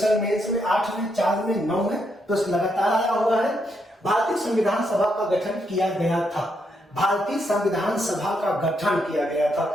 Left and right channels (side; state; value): both; normal; correlation 0.78